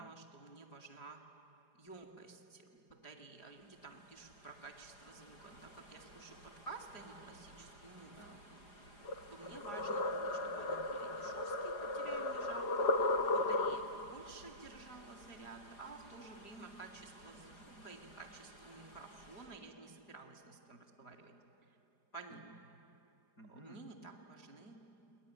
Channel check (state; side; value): late; right; 4.9 ms